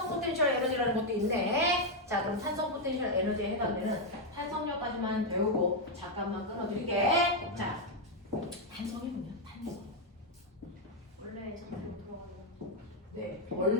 포텐셜 에너지라는 것도 있네. 자, 그럼 탄성 포텐셜 에너지에 해당되는 탄성력까지만 배우고 잠깐만 끊어드릴게. 자, 탄성이 뭐냐? 탄성. 원래 잠깐 들어가요. 네,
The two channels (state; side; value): normal; both; correlation 0.01